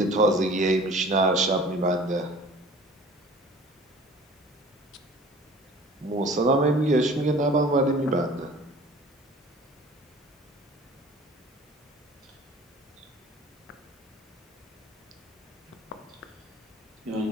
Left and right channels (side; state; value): both; normal; correlation 0.46